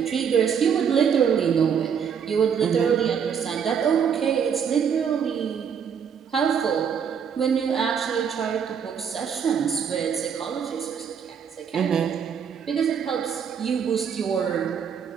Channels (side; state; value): left; quieter; 7.4 dB